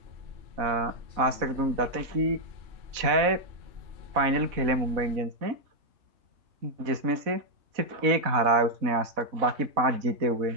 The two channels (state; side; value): late; left; 4.0 ms